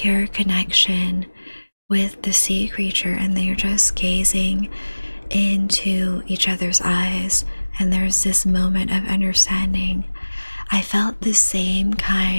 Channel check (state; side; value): inverted; both; correlation -1.00